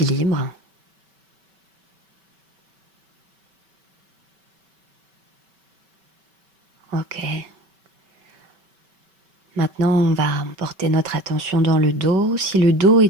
Ok. Maintenant, on va porter notre attention dans le dos. Si le dos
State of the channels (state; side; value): late; left; 5.2 ms